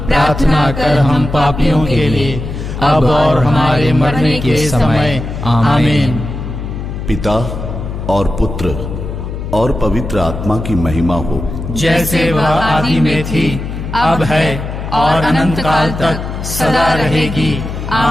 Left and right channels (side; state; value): left; noise; hum, 7 dB below the sound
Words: प्रार्थना कर हम पापियों के लिए, अब और हमारे मरने के समय। आमीन। पिता और पुत्र और पवित्र आत्मा की महिमा हो, जैसे वह आदि में थी, अब है, और अनंत काल तक सदा रहेगी।